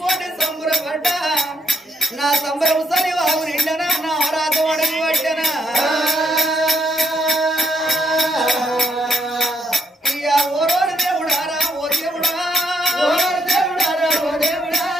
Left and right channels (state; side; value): normal; both; correlation 0.76